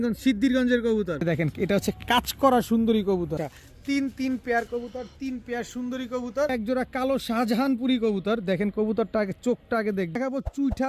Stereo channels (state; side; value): identical; both; correlation 1.00